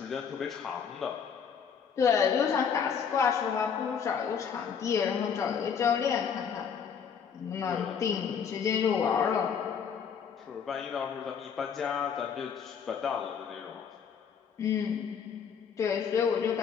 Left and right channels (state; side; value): quieter; right; 7.0 dB